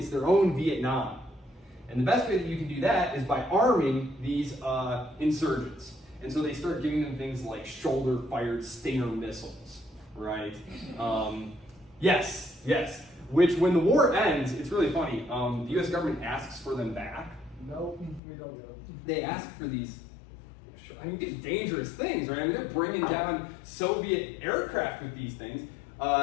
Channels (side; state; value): right; drops out; at 18.2 s